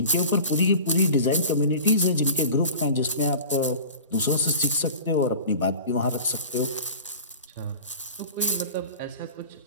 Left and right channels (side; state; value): both; inverted; correlation -0.38